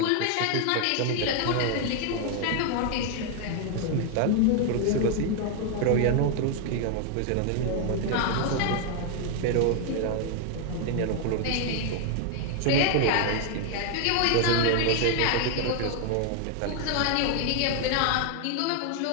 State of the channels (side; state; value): both; different; correlation 0.00